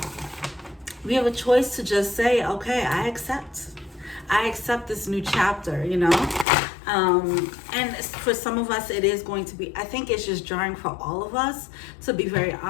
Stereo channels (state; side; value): drops out; right; at 6.5 s